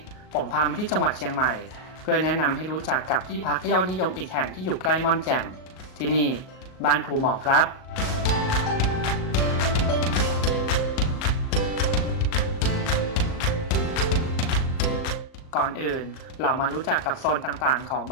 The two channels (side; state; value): right; late; 38 ms